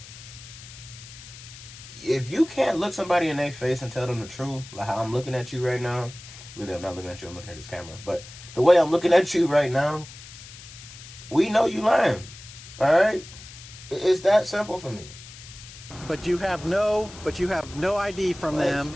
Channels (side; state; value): left; noise; hiss, 16 dB below the sound